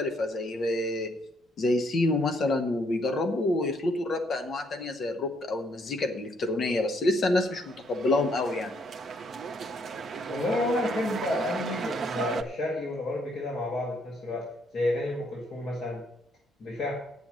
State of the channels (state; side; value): normal; both; correlation 0.70